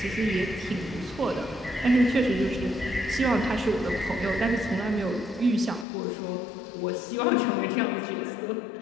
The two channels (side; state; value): right; drops out; at 5.9 s